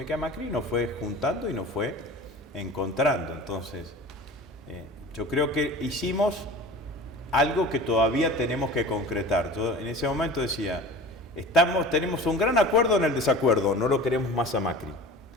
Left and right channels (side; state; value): both; normal; correlation 0.38